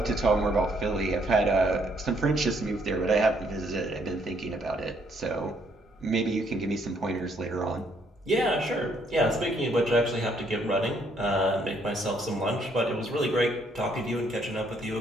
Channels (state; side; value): normal; both; correlation 0.69